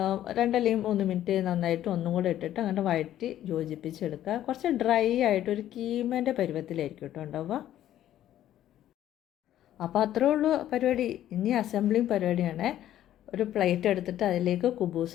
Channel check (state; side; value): quieter; right; 12.2 dB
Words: 2 അല്ലെങ്കിൽ 3 മിനിറ്റ് നന്നായിട്ട് ഒന്നും കൂടെ ഇട്ടിട്ട് അങ്ങനെ വഴറ്റി യോജിപ്പിച്ചെടുക്കുക. കുറച്ച് ഡ്രൈ ആയിട്ട് ഒരു കീമേൻ്റെ പരുവത്തിലായിരിക്കും കേട്ടോ ഉണ്ടാവുക. അപ്പോൾ അത്രേ ഉള്ളൂ പരിപാടി. ഇനി അസംബ്ലിങ് പരിപാടിയാണ്. ഒരു പ്ലേറ്റ് എടുത്തിട്ട് അതിലേക്ക്